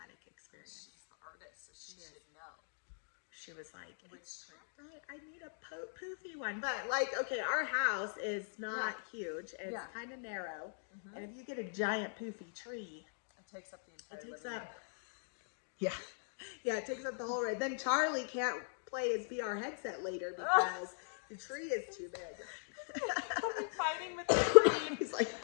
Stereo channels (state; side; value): silent; right; digital silence